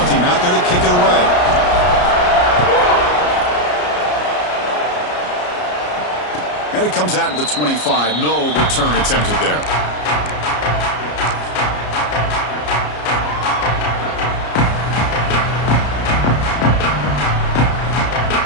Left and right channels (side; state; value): right; late; 33 ms